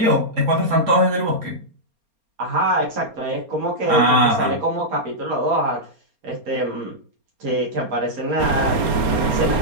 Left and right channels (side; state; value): left; late; 4.3 ms